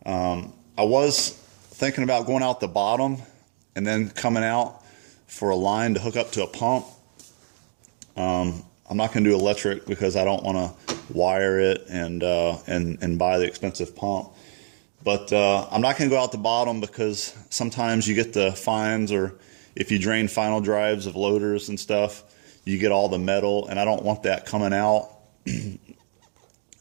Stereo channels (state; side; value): silent; left; digital silence